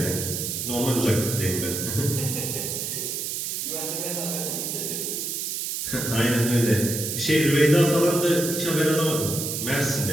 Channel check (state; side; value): noise; right; hiss, 3 dB below the sound